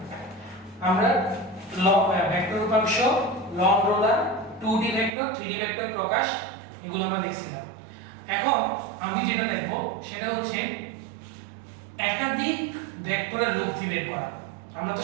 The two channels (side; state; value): left; drops out; at 5.1 s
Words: আমরা ভেক্টর উপাংশ, লং রোলার, 2D ভেক্টর, 3D ভেক্টর প্রকাশ এগুলো আমরা দেখছিলাম। এখন আমি যেটা দেখব সেটা হচ্ছে একাধিক ভেক্টরের লব্ধি বের করা। আমরা তো